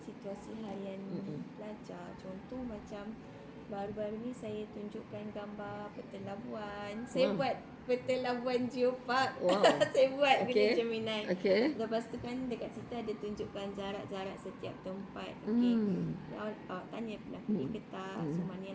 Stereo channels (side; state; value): both; identical; correlation 1.00